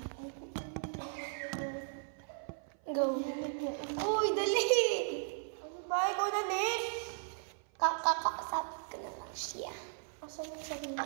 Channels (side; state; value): left; silent; 53 dB below the other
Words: Go. Uy, dali! Ano ba? Ikaw na next? Kakakasapit ko na lang siya. Asan yung sabi mo?